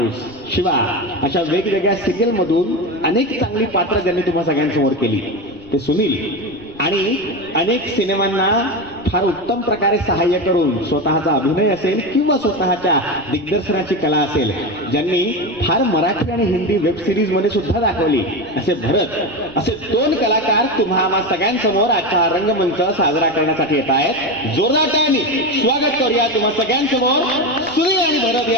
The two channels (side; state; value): right; noise; rumble, 23 dB below the sound